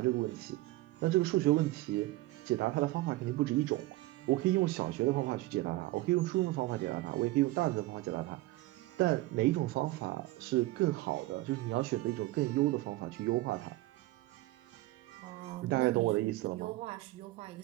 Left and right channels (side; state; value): left; quieter; 18.5 dB